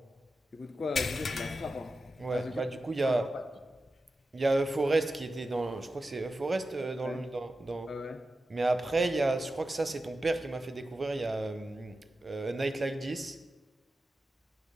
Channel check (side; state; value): both; normal; correlation 0.92